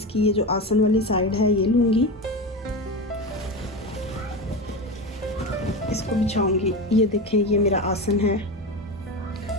ये जो आसन वाली साइड है ये लूँगी, इसको बिछाऊँगी। ये देखें, ये मेरा आसन है,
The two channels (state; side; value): normal; both; correlation 0.22